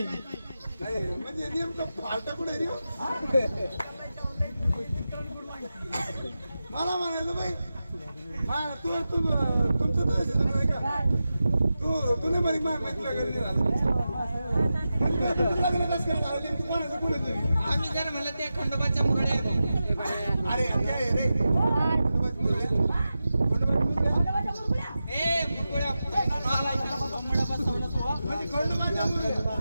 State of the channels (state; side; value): inverted; both; correlation -0.92